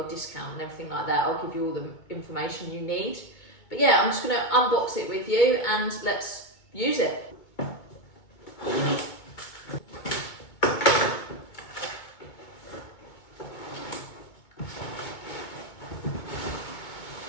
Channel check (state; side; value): late; right; 2.2 ms